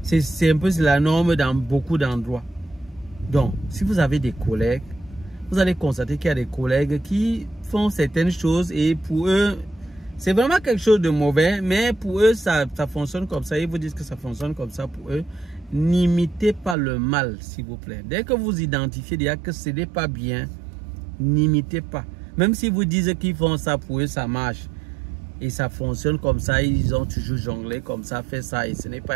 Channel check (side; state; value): left; drops out; at 16.8 s